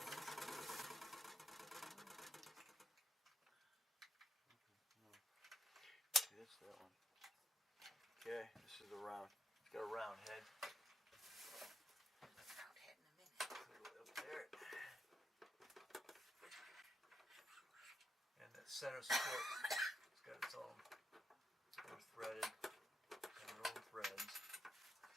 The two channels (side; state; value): both; normal; correlation 0.80